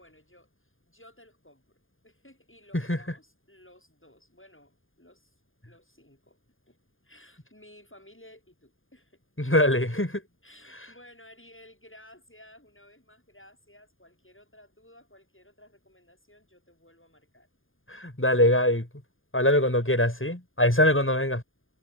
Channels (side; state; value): right; late; 0.59 ms